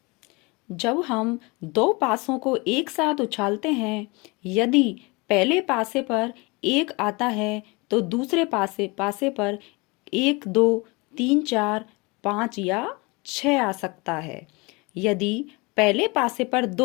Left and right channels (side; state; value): right; quieter; 26.6 dB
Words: जब हम दो पासों को एक साथ उछालते हैं, यदि पहले पासे पर 1 आता है तो दूसरे पासे पर 1, 2, 3, 4, 5 या 6 आ सकता है। यदि पहले पासे पर